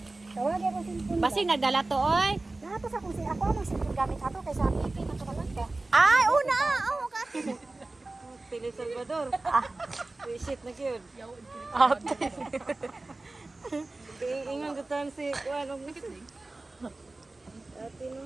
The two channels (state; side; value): quieter; left; 3.1 dB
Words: Tawag ako sin Basig nagdala to oy. Dapat sa kung si ako ang sin gamit ato kaysa pipi na kamalanda. Ay, una. Oh, ka. Pili Salvador. Visit na gyud. Ate. Ingon gutan si kuan og ate